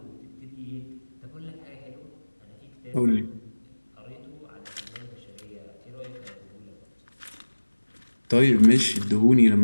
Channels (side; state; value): both; inverted; correlation -1.00